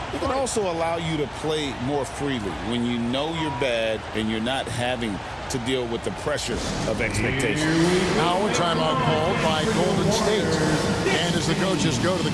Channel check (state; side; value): identical; both; correlation 1.00